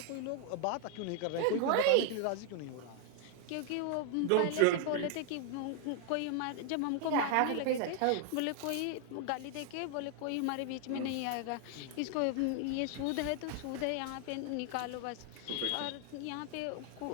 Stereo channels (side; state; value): both; different; correlation 0.00